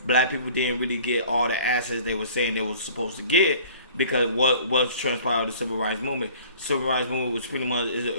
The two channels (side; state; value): both; inverted; correlation -0.49